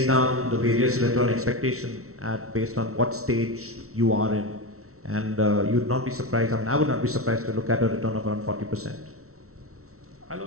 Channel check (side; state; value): left; late; 0.63 ms